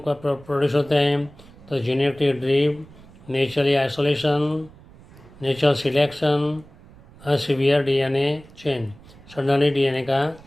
का प्रोड्यूस होते हैं। तो genetic drift, naturally isolation, natural selection, severe DNA change, suddenly DNA का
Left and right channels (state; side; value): noise; right; rumble, 23 dB below the sound